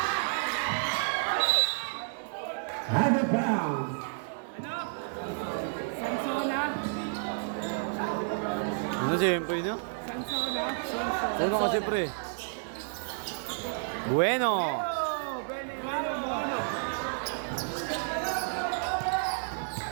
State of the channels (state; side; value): silent; left; digital silence